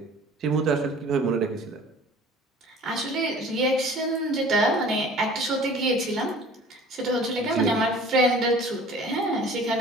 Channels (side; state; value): both; normal; correlation 0.47